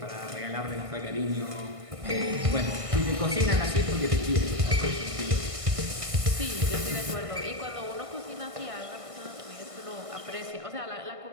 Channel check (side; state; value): left; late; 1.6 ms